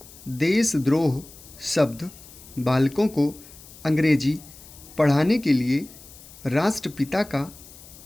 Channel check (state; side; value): noise; left; hiss, 20 dB below the sound